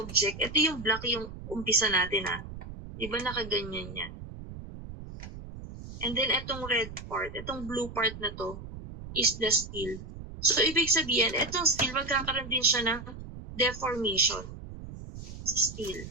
Ito yung black yung umpisa natin Di ba nakaganyan yan? And then itong red part, itong blue part na to is the steel. So, ibig sabihin, itong steel magkakaroon din siya ng deformation. Si steel.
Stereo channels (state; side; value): noise; right; rumble, 12 dB below the sound